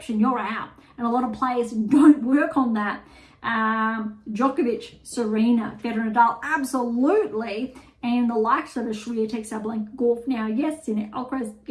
you're out. And a lot of players don't work on that. Djokovic, Serena, Federer, Nadal, absolutely. And the likes of the Swiatek, Sabalenka, Gauff now, yes, Sinner, Alcaraz,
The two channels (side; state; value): both; identical; correlation 1.00